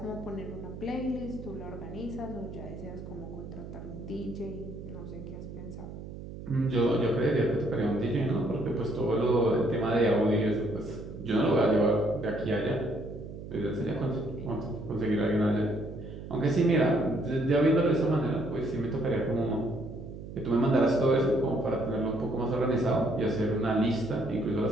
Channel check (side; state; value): right; noise; hum, 11 dB below the sound